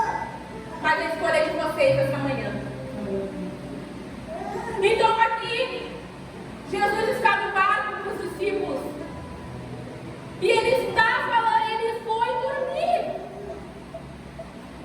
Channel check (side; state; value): both; identical; correlation 1.00